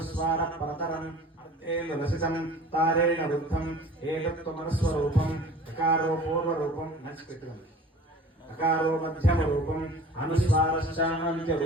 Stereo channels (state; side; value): normal; both; correlation 0.44